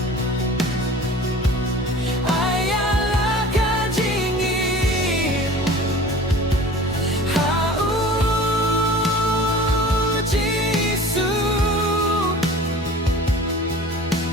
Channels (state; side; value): normal; both; correlation 0.42